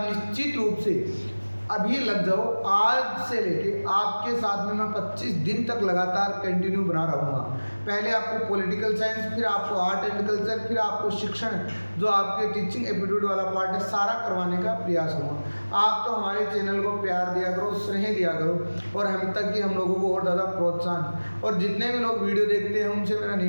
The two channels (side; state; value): both; inverted; correlation -1.00